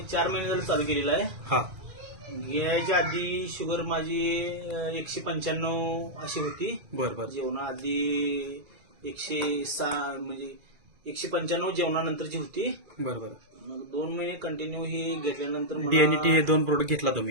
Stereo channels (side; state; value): left; late; 2.4 ms